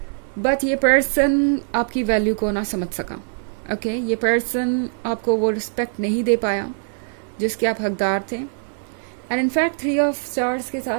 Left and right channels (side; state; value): left; silent; 64 dB below the other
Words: बट ये पर्सन आपकी वैल्यू को ना समझ सका। ओके, ये पर्सन आपको वो रिस्पेक्ट नहीं दे पाया जिसके आप हकदार थे। एंड इनफैक्ट 3 ऑफ स्टार्स के